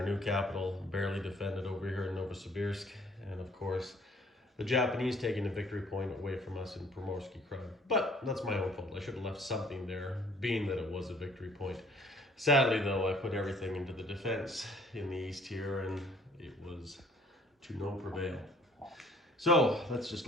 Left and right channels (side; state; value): both; normal; correlation 0.58